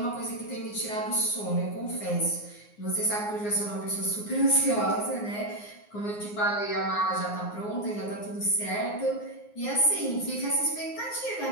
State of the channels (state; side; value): late; right; 9.6 ms